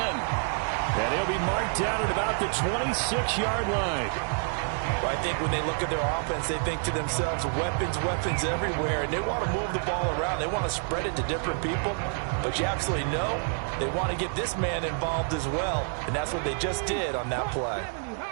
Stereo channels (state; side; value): silent; left; 55 dB below the other